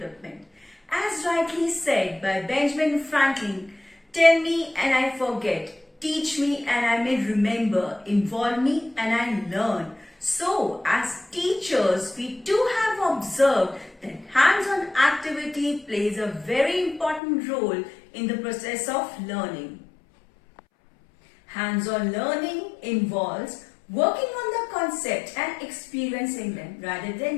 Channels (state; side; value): drops out; right; at 17.2 s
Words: As rightly said by Benjamin Franklin, tell me and I forget, teach me and I may remember, involve me and I learn. So, as teachers, we too have observed that hands-on activity plays a very important role in the process of learning. Hands-on learning involves working on the concept and experiencing them rather